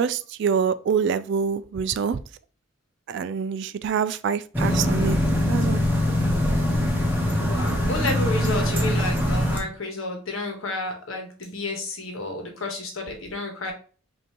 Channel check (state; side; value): normal; both; correlation 0.55